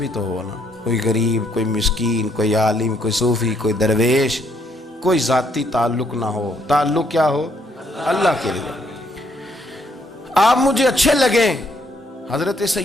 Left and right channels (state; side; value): normal; both; correlation 0.70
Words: تو ہو نا, کوئی غریب, کوئی مسکین, کوئی عالم, کوئی صوفی, کوئی درویش, کوئی ذاتی تعلق نہ ہو, تعلق کیا ہو؟ اللہ کے لیے. آپ مجھے اچھے لگیں. حضرت